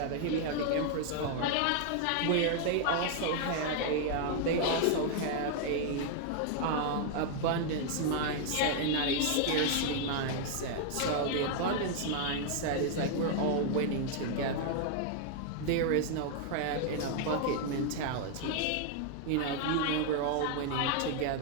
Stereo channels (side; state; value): both; different; correlation 0.00